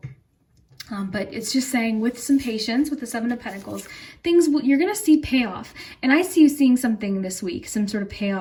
But it's just saying with some patience, with the Seven of Pentacles, you're going to see payoff. And I see you seeing something this week, some sort of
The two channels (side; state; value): both; identical; correlation 1.00